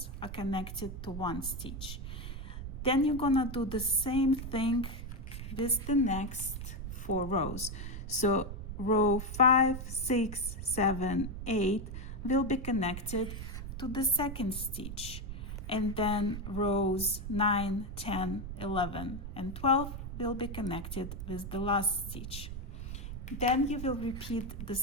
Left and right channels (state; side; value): noise; right; rumble, 7 dB below the sound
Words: are connected to 1 stitch. Then you're gonna do the same thing with the next 4 rows. So row 5, 6, 7, 8 will be connected to the second stitch, and then rows 9, 10, 11, and 12 will be connected with the last stitch. Then you will repeat the